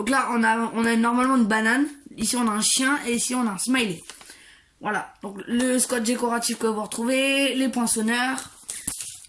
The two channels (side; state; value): both; identical; correlation 1.00